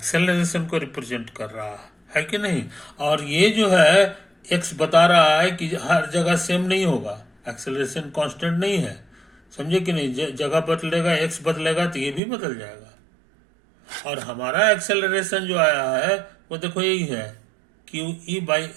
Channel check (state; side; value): drops out; left; at 12.2 s